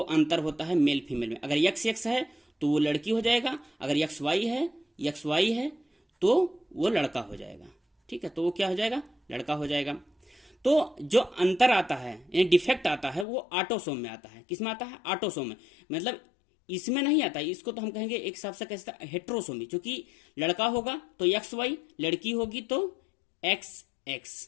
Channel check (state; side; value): drops out; right; at 13.2 s